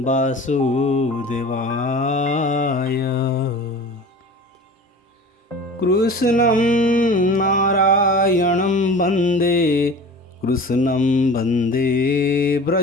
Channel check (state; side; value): normal; both; correlation 0.38